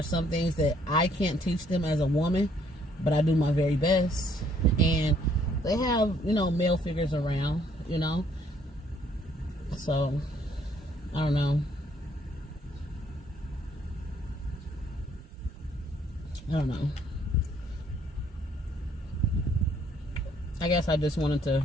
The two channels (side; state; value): both; normal; correlation 0.65